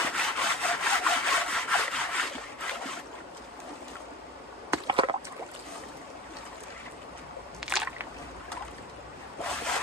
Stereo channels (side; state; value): both; normal; correlation 0.36